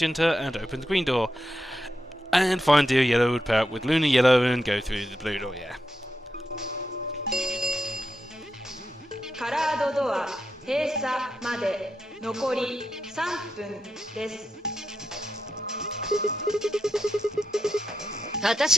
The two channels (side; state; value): both; normal; correlation 0.86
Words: and open the green door. And Fire and Dio Yellow would pair up with Luna Yellow and go through the blue door, yeah. カラードドア閉鎖まで残り3分です。